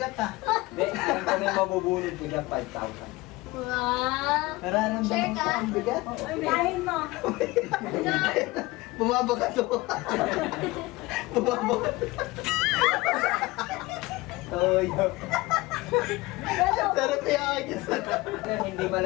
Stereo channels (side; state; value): right; quieter; 20.9 dB